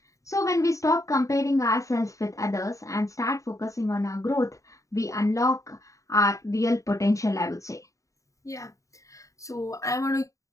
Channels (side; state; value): right; late; 0.16 ms